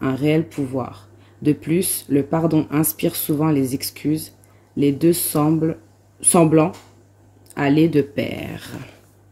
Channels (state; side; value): identical; both; correlation 1.00